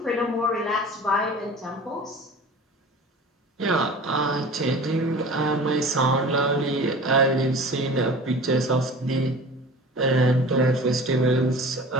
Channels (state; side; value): normal; both; correlation 0.40